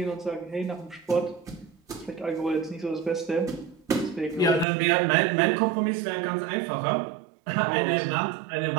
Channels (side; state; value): left; drops out; at 4.7 s